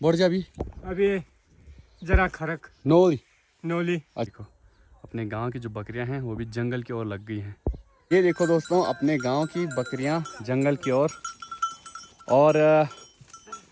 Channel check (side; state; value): both; identical; correlation 1.00